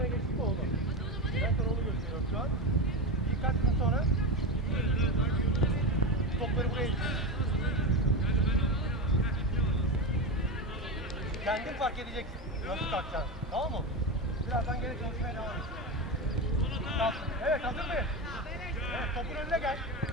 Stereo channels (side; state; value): both; normal; correlation 0.18